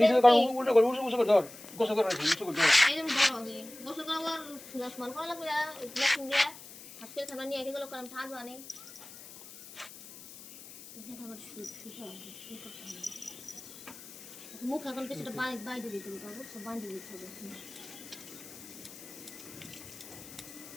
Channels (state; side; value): noise; left; hiss, 16 dB below the sound